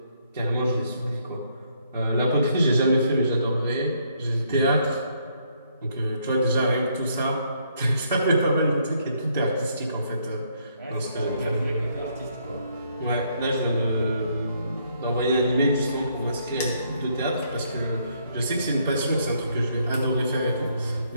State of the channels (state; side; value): inverted; both; correlation -0.71